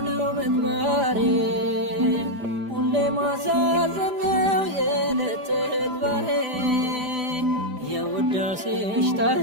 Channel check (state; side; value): late; left; 5.0 ms